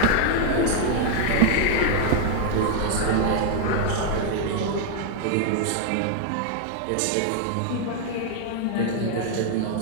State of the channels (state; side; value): different; both; correlation 0.00